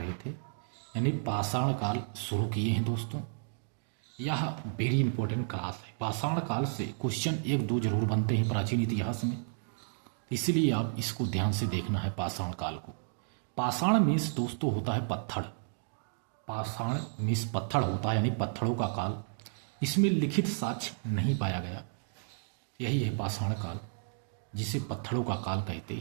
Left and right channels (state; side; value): silent; left; digital silence